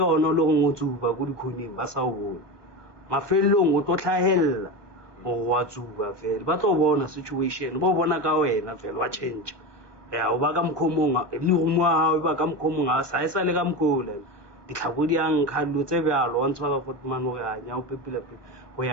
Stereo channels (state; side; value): late; left; 1.2 ms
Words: ona lo go tsuba go dikhoning ba sa o bona mafelong o to tlhahella o wa tsuba fela ba tlo bona situation bo bona ka wena fela wa change o ba ka mkhomong le go mo ha ba ka mkhomong a sa isa le ka mkhola ditlhako di ang khallo tse bjalo wa ntshwa ka Fortman o ga NYAOPE pele go